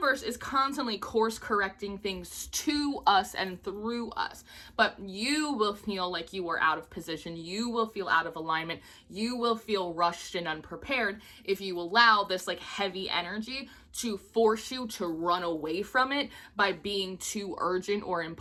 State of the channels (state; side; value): identical; both; correlation 1.00